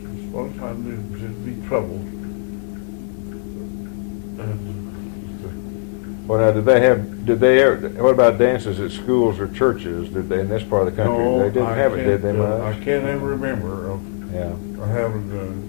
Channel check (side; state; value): right; silent; 65 dB below the other